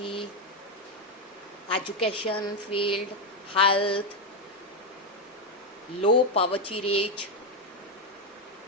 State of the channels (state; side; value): normal; both; correlation 0.05